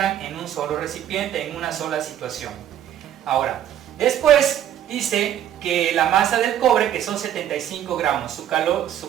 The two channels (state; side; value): quieter; left; 10.8 dB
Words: en un solo recipiente, en una sola situación. Ahora, después dice que la masa del cobre, que son 75 gramos, su